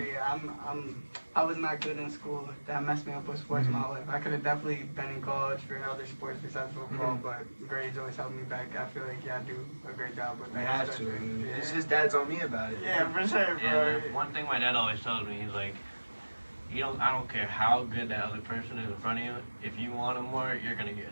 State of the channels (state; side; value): inverted; both; correlation -1.00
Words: I was not good in school. That messed me up with sports my life. I could have definitely been in college for other sports besides football, but grades always held me back. I feel like I do a great job with that. I have to. His dad's on me about it. Yeah, for sure, bro. Yeah, one thing my dad always tells me, he's like, I don't care how good that other person is in front of you. If you want them more, you're gonna get